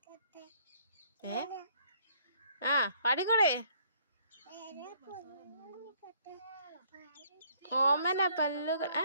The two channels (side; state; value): both; inverted; correlation -0.63